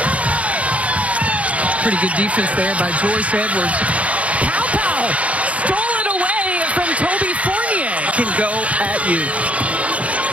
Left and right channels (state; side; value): late; left; 0.065 ms